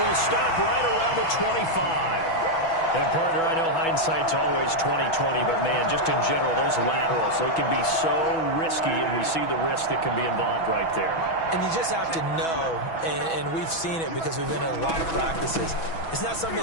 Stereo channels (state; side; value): late; right; 6.1 ms